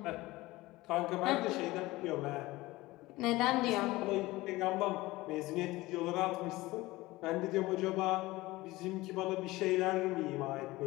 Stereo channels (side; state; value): right; quieter; 19.5 dB